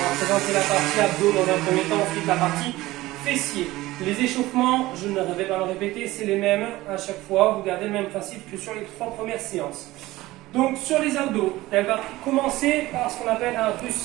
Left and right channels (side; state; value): left; quieter; 18.0 dB